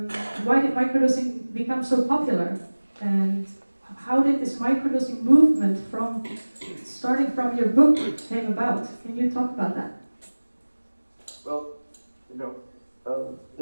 why did microdosing become so popular? And how did this microdosing movement from starting from your book came about? Can you talk about that? Well,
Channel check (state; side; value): inverted; both; correlation -1.00